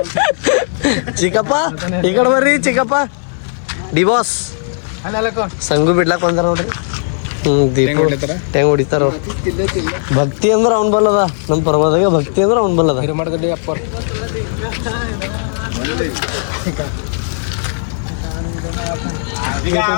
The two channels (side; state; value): right; silent; 66 dB below the other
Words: ಚಿಕ್ಕಪ್ಪ ಈ ಕಡೆ ಬರ್ರಿ. ಚಿಕ್ಕಪ್ಪ ಡಿ ಬಾಸ್ ಸಂಗು ಬಿಡ್ಲಾಕ್ ಬಂದಾರ ನೋಡ್ರಿ. ದೀಪ ಟೆಂಗ್ ಹೊಡಿತಾರ. ಭಕ್ತಿ ಅಂದ್ರೆ ಅವ್ನ್ ಬಲ್ಲದ. ನಮ್ಮ ಪರ್ವದಾಗ ಭಕ್ತಿ ಅಂದ್ರೆ ಅವ್ನ್ ಬಲ್ಲದ.